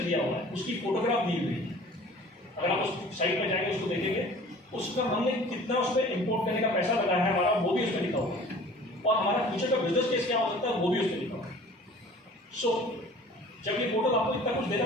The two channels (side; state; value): both; normal; correlation 0.47